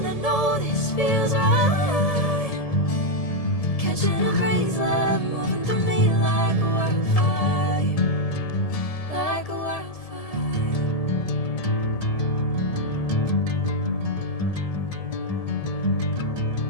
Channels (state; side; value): late; right; 1.7 ms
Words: I know this feels right. Catching a breeze, love moving through me like a wildfire, like a wildfire.